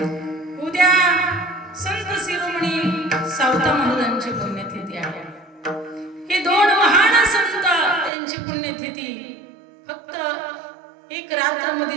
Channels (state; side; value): drops out; left; at 8.1 s